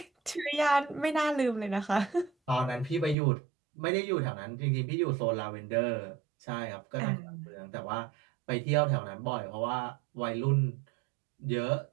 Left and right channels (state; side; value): drops out; left; at 3.2 s